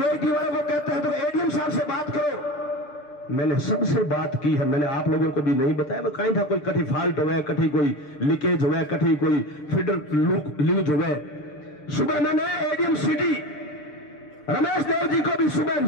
वालों को कहते हैं तो एडीएम साहब से बात करो। मैंने सबसे बात की है, मैंने आप लोगों को भी नहीं बताया। मैं कहीं था कोई कठी फॉल्ट हो गया, कठी कोई लीकेज हो गया, कठी कोई फीडर लीज हो गए। सुबह मैंने एडीएम सिटी रमेश देव जी को भी सुबह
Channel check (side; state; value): right; late; 6.7 ms